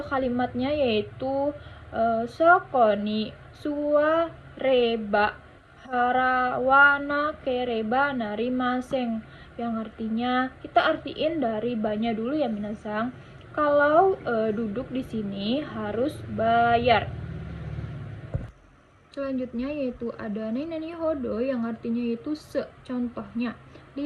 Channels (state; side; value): identical; both; correlation 1.00